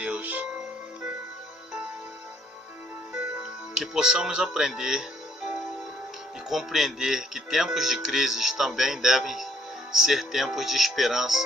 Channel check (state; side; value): normal; both; correlation 0.65